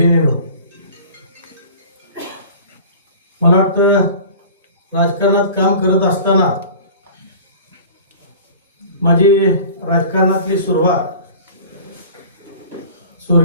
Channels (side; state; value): both; inverted; correlation -0.42